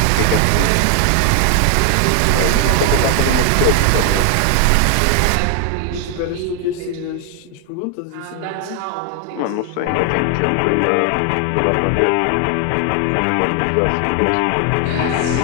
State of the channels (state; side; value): different; both; correlation 0.00